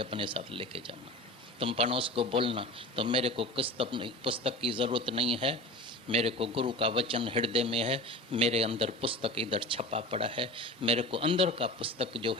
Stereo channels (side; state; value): both; normal; correlation 0.34